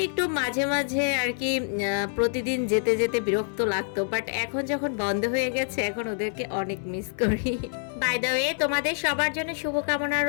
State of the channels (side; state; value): right; silent; 58 dB below the other